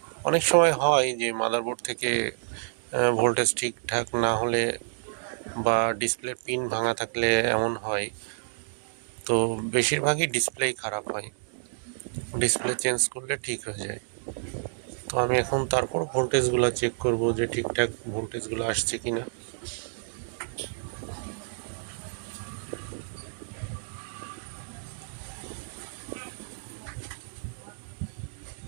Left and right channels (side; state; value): left; silent; digital silence